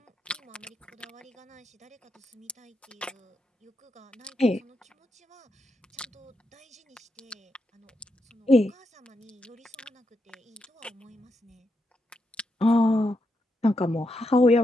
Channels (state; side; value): normal; both; correlation 0.83